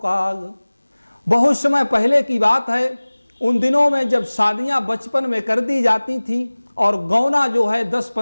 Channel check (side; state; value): both; inverted; correlation -1.00